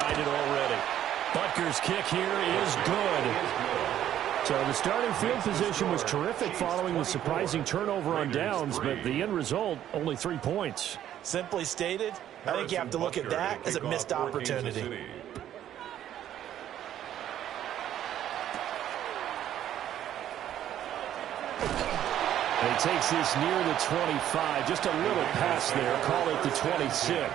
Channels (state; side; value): quieter; left; 11.3 dB